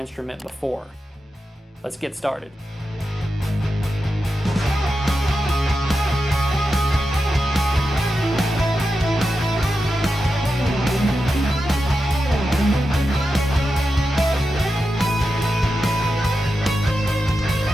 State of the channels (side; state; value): both; normal; correlation 0.89